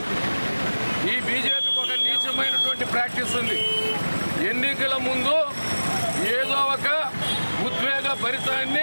ఈ బీజేపీకి ఒక నీచమైనటువంటి ప్రాక్టీస్ ఉంది. ఎన్నికల ముందు ఏదో ఒక ఉద్వేగ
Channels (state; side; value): inverted; both; correlation -1.00